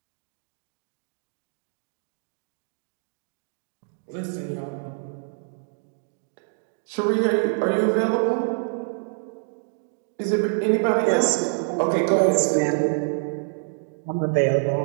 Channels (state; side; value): silent; left; 61 dB below the other